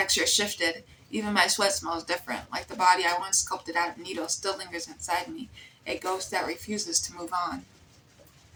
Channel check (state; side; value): identical; both; correlation 1.00